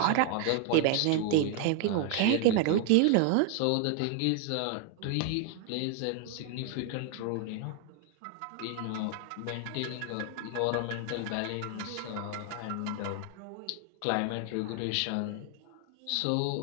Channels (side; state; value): both; different; correlation 0.00